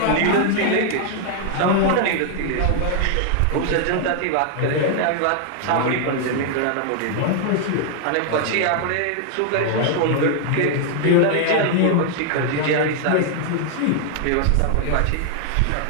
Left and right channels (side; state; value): both; different; correlation 0.00